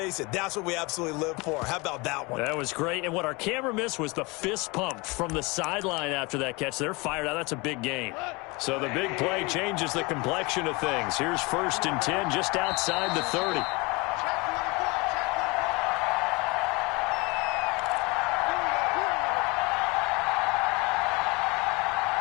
it, that's what we absolutely live for. How about that one? That was great. And what our camera missed was the fist pump from the sideline after that catch. They're fired out. That's a big game. So the big play changes the complexion of things. Here's 1st and 10 just outside the 30.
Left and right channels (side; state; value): right; quieter; 25.8 dB